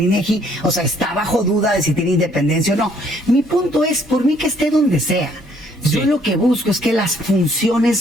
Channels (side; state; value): both; normal; correlation 0.64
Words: INEGI. O sea, está bajo duda de si tiene independencia o no. Mi punto es, por mí que esté donde sea. Yo Sí. lo que busco es que las funciones